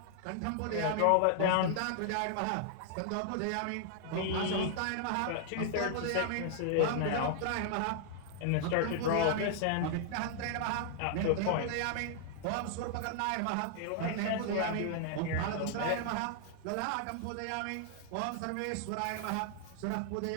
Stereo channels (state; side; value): different; both; correlation -0.01